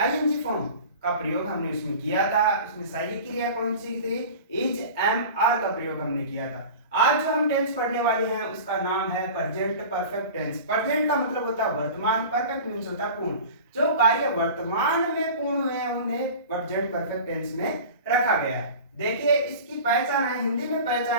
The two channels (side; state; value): both; inverted; correlation -0.37